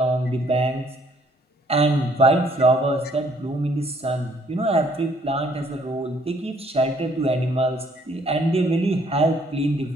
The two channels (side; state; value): both; normal; correlation 0.64